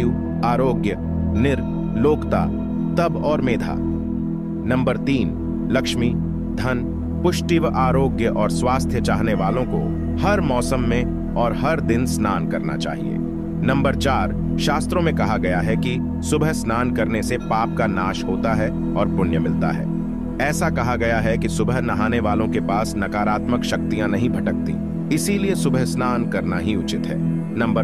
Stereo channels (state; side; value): identical; both; correlation 1.00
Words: आरोग्य, निर्लोकता, तप और मेधा। नंबर 3, लक्ष्मी, धन, पुष्टि व आरोग्य और स्वास्थ्य चाहने वालों को हर मौसम में और हर दिन स्नान करना चाहिए। नंबर 4, शास्त्रों में कहा गया है कि सुबह स्नान करने से पाप का नाश होता है और पुण्य मिलता है। ऐसा कहा गया है कि सुबह नहाने वालों के पास नकारात्मक शक्तियां नहीं भटकती, इसीलिए सुबह स्नान करना ही उचित है। नंबर